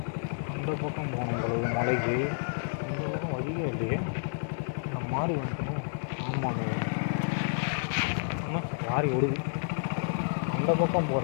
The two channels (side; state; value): right; silent; 58 dB below the other